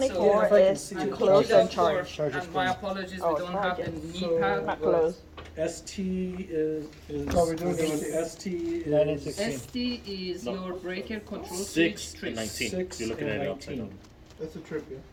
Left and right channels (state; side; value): identical; both; correlation 1.00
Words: is to close and charge. And my apologies, we Oh, don't have the charge it. knee pad. Not but closed. ST is, No, we're doing ST 9 and is 16. ST is No. your breaker control 6 switch and trip. 19. 6 You're looking at and it upside 19. down. That's a triplet.